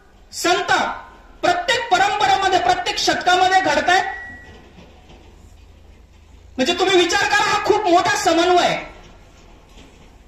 संत प्रत्येक परंपरेमध्ये, प्रत्येक शतकामध्ये घडतायत. म्हणजे तुम्ही विचार करा, हा खूप मोठा समन्वय आहे.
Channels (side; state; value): both; identical; correlation 1.00